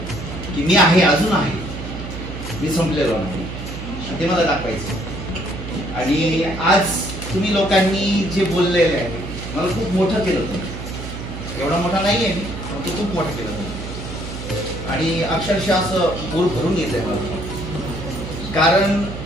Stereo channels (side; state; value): right; noise; hum, 9 dB below the sound